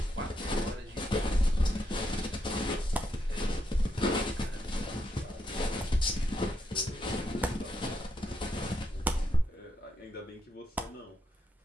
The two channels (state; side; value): normal; both; correlation 0.80